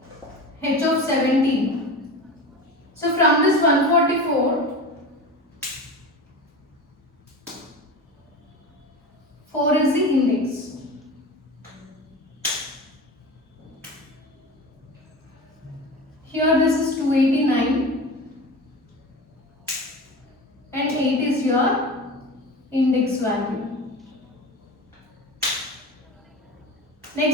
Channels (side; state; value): both; normal; correlation 0.31